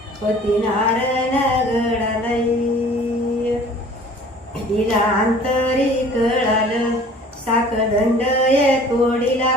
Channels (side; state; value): both; normal; correlation 0.49